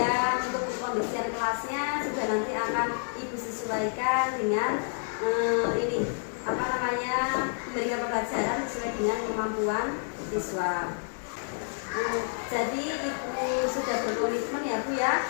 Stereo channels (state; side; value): silent; right; digital silence